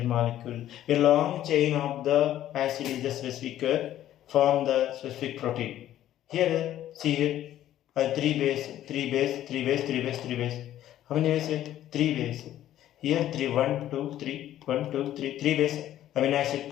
molecule. A long chain of the acid is the specific form the specific protein. Here, see here, 3 base. How many bases? 3 bases. Here 3, 1, 2, 3, 1, 2, 3, 3 base amino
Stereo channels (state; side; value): quieter; right; 12.5 dB